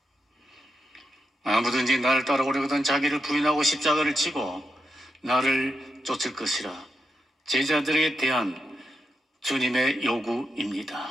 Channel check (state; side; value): normal; both; correlation 0.85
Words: 아무든지 나를 따라오려거든 자기를 부인하고 십자가를 지고 나를 쫓을 것이라. 제자들에게 대한 주님의 요구입니다.